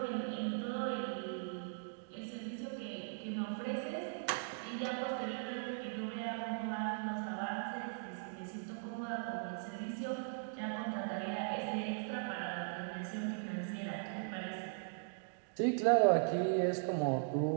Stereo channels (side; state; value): left; silent; digital silence